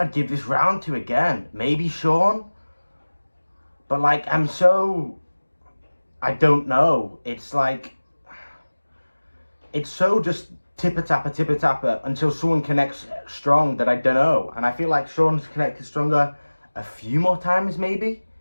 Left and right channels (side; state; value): both; inverted; correlation -1.00